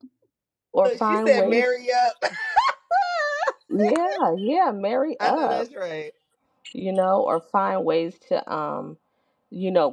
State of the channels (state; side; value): identical; both; correlation 1.00